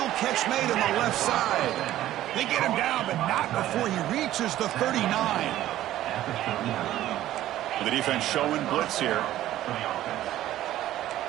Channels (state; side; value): quieter; left; 13.7 dB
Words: catch made on the left side. They get him down, but not before he reaches the 39. The defense showing blitz here.